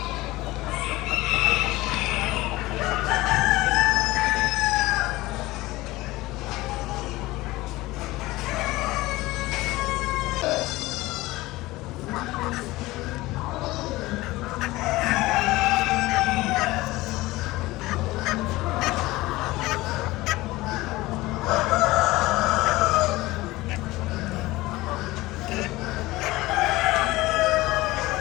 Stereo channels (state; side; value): quieter; right; 19.3 dB